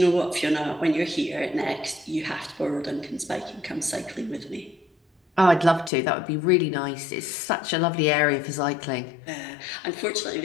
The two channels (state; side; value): drops out; right; at 5.9 s